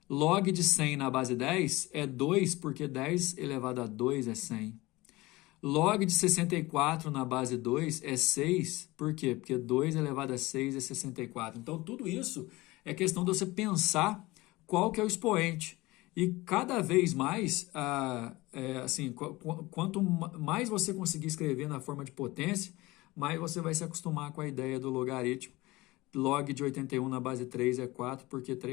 Log de 100 na base 10 é 2, porque 10 elevado a 2 é 100. Log de 64 na base 2 é 6, por quê? Porque 2 elevado a 6 é 64. Então, tudo isso é questão de você pensar qual que é o expoente. E cada vez mais, quanto mais você conseguir escrever na forma de potência, mais você vai se acostumar com a ideia do logaritmo. Log de 81 na base 3 é 4, porque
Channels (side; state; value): right; quieter; 20.6 dB